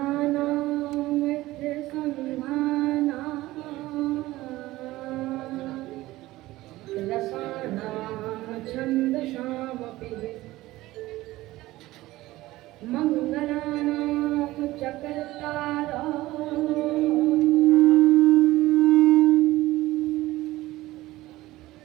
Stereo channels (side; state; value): left; quieter; 17.6 dB